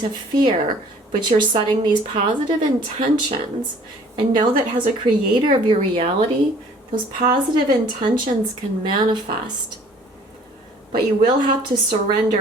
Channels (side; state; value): both; normal; correlation 0.54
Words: fear, but you're setting these positive intentions, and know that as a creator of your reality, those positive intentions can manifest. But you will have to